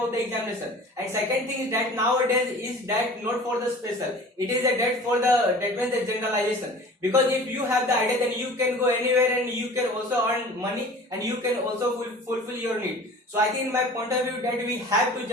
the examination. And second thing is that nowadays is that not for the special, it is a that for the, that means the generalization. Because if you have the idea, then you can go anywhere and you can also earn money and you can also fulfill your need. So I think in my point of view that we have to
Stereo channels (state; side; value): normal; both; correlation 0.42